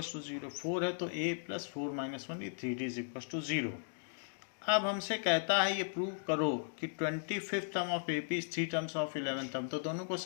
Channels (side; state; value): right; silent; digital silence